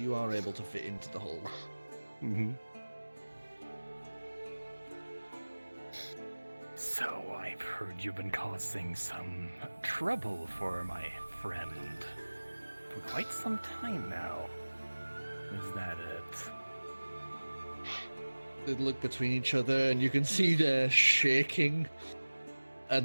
are able to fit into the hold. Mm-hmm. So I've heard you've been causing some trouble for my friend for quite some time now. Is that it? They look between each other, and you can see they're shaking.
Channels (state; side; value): inverted; both; correlation -1.00